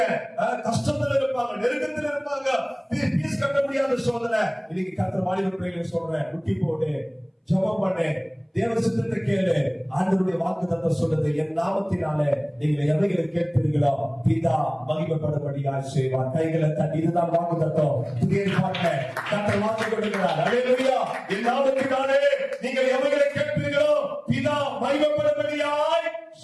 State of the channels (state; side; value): identical; both; correlation 1.00